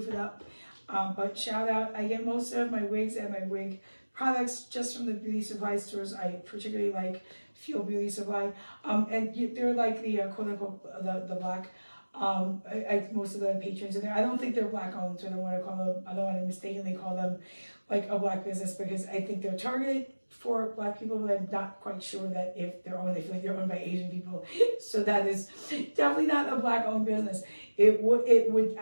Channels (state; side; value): inverted; both; correlation -1.00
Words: it up. But shout out, I get most of my wigs and my wig products just from the beauty supply stores. I particularly like Fuel Beauty Supply, and they're like the quote unquote the black. Most of the patrons in there, I don't think they're black owned, so I don't want to mistakenly call them like a black business, because I think they're targeted for black people, but I'm not quite sure that if they're owned, they feel like they're owned by Asian people. So that is definitely not a black owned business. It would